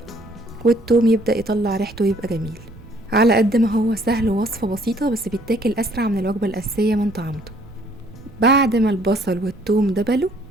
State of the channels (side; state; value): right; noise; rumble, 20 dB below the sound